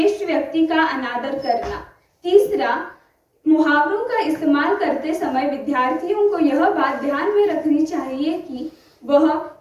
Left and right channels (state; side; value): identical; both; correlation 1.00